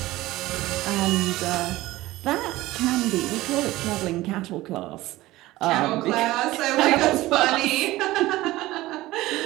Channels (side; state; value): left; quieter; 17.6 dB